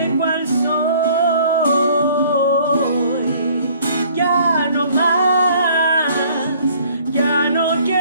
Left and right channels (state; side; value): inverted; both; correlation -0.56